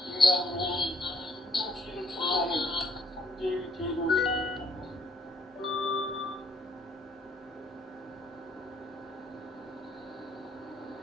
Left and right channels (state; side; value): normal; both; correlation 0.67